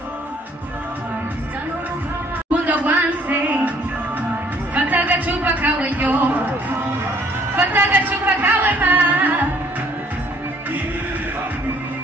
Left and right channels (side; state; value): both; normal; correlation 0.61